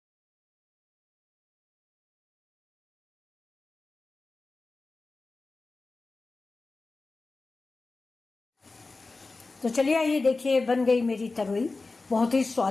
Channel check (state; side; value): quieter; right; 3.7 dB